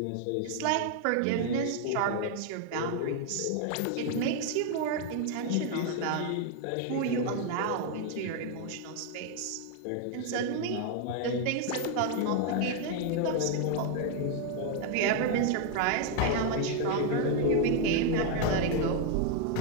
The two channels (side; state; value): both; different; correlation 0.01